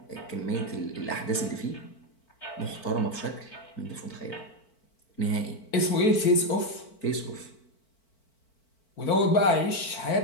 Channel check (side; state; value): right; late; 4.5 ms